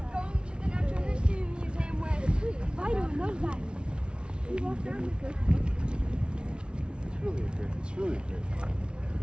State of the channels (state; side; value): late; left; 0.057 ms